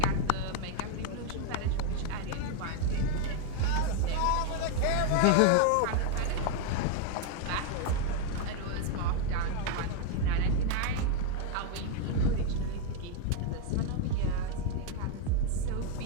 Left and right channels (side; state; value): both; different; correlation 0.00